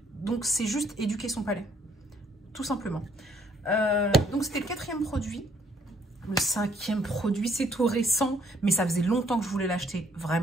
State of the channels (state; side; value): normal; both; correlation 0.64